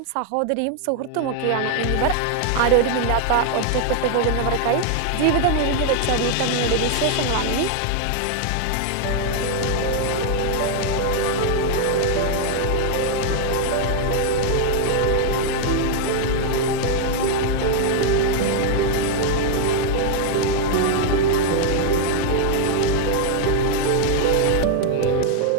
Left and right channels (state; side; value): different; both; correlation 0.00